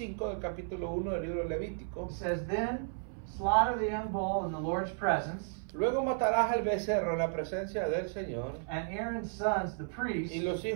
del capítulo 1 del libro de Levítico, It says, Then slaughter the young bull in the Lord's presence, luego matarás al becerro en la presencia del Señor, and Aaron's sons, the priests, y los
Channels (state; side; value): silent; left; 55 dB below the other